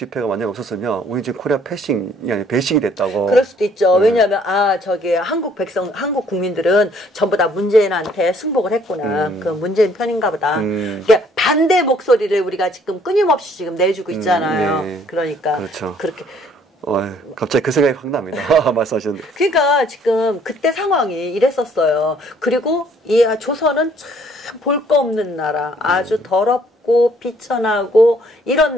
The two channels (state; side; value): normal; both; correlation 0.62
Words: 만약 없었으면 우리 지금 코리아 패싱이 아니라 배싱이 됐다고. 그럴 수도 있죠. 왜냐하면 저기 한국 국민들은 전부 다 문재인한테 승복을 했구나. 그 문재인 편인가 보다. 그러니까 반대 목소리를 우리가 지금 끊임없이 지금 내주고 있잖아요. 네. 그러니까 그렇죠. 그렇게. 갑자기 그 생각이 확 납니다. 말씀하셨는데. 그러니까 지금 그때 상황이 이랬었어요. 그리고 이 조선은 참 볼 거 없는 나라, 아주 더럽고 비천하고 이런